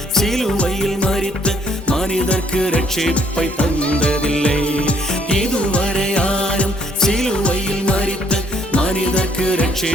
சிலுவையில் மரித்த மனிதர்க்கு ரட்சிப்பை தந்ததில்லை. இதுவரை யாரும் சிலுவையில் மரித்த மனிதர்க்கு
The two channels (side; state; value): both; normal; correlation 0.67